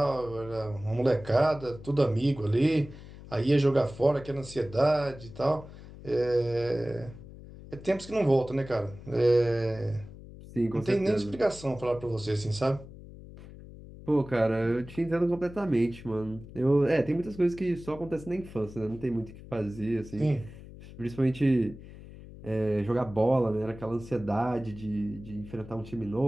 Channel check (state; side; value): noise; left; hum, 16 dB below the sound